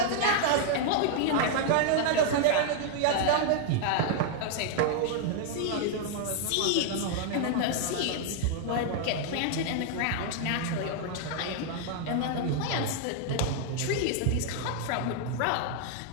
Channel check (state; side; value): different; both; correlation 0.00